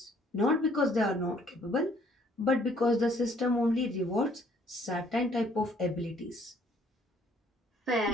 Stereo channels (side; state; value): both; normal; correlation 0.62